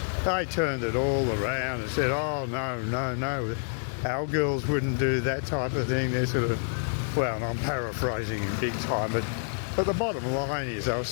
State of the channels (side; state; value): right; silent; digital silence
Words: they turned it all around and said, oh no, our girls wouldn't do that type of thing. They're sort of, well, and I'm paraphrasing in big time, but the bottom line is I was